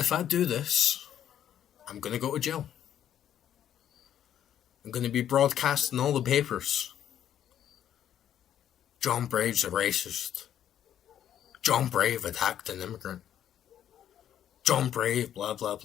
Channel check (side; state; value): right; quieter; 10.3 dB